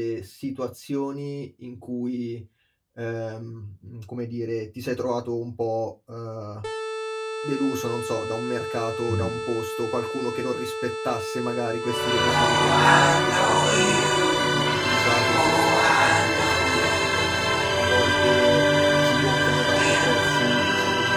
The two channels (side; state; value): both; identical; correlation 1.00